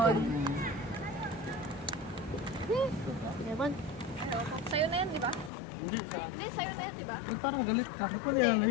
Yaman. Ano, sa'yo na yan, di ba? Hindi, sa Hindi, sa'yo na yan, di ba? Ba't parang galit ka? Ba't wala yan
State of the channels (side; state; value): right; drops out; at 5.5 s